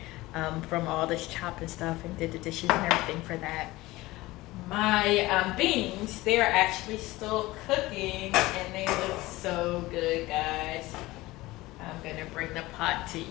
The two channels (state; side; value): quieter; right; 19.3 dB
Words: from all this chopping stuff and did the dishes and everything for that. My beans, they're actually still cooking and they look so good, guys. I'm gonna bring the pot to